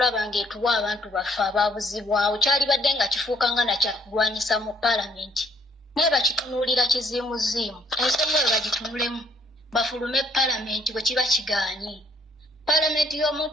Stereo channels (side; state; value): both; normal; correlation 0.64